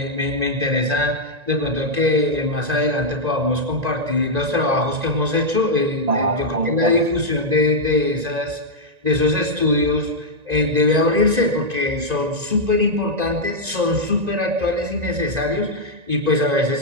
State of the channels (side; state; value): left; late; 1.9 ms